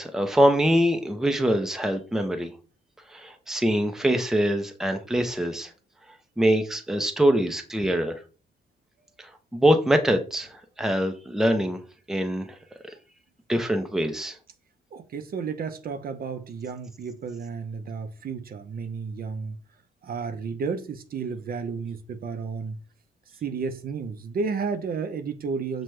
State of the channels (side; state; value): both; normal; correlation 0.84